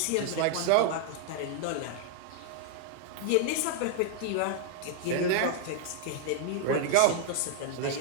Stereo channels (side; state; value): both; different; correlation 0.00